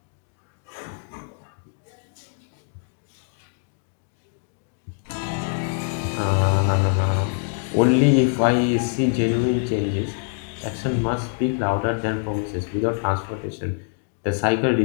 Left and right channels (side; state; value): right; silent; 57 dB below the other